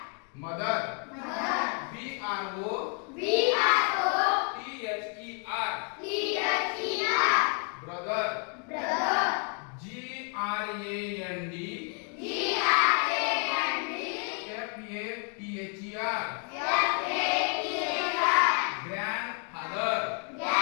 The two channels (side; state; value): right; quieter; 38.6 dB